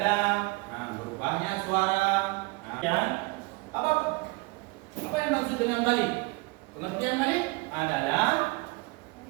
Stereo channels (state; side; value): quieter; left; 24.7 dB